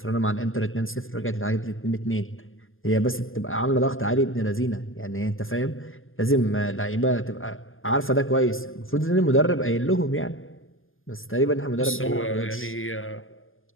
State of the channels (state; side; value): late; right; 0.59 ms